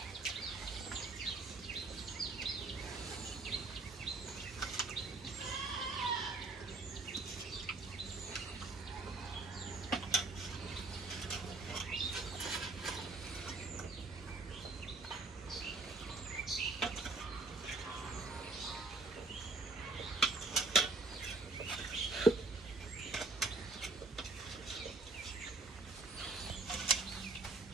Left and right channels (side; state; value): left; quieter; 3.4 dB